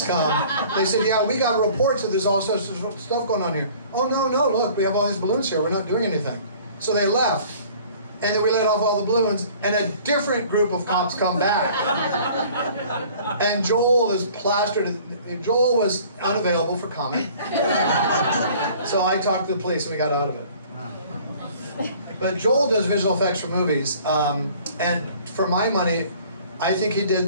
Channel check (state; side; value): inverted; both; correlation -0.51